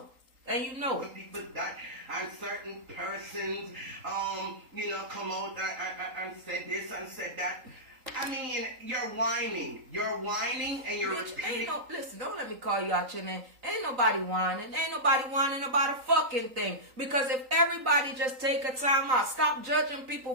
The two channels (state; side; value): late; left; 3.8 ms